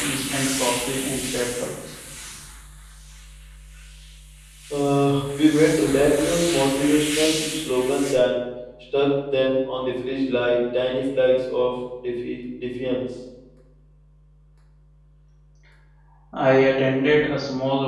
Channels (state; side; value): identical; both; correlation 1.00